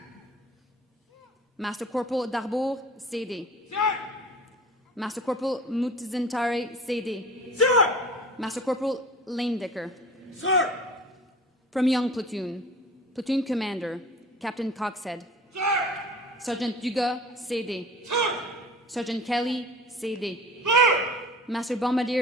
Master Corporal Darbour, CD. Sir! Master Corporal Mutizentare, CD. Sir! Master Corporal Lanedecker. Sir! From Young Platoon, Platoon Commander Captain Coxhead. Sir! Sergeant Dugas, CD. Sir! Sergeant Kelly, CD. Sir! Master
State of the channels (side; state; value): both; normal; correlation 0.41